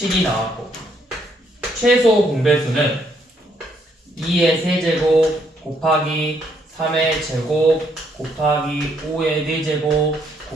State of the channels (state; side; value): normal; both; correlation 0.71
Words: 나왔고 최소 공배수는 2의 세제곱 곱하기 3의 제곱 곱하기 5의 4제곱